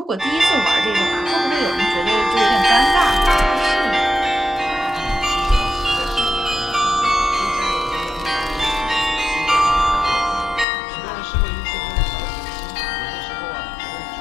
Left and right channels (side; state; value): right; drops out; at 10.7 s